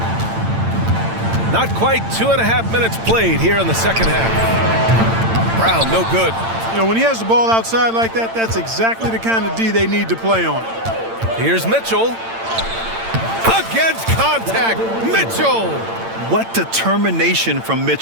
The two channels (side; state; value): left; late; 8.8 ms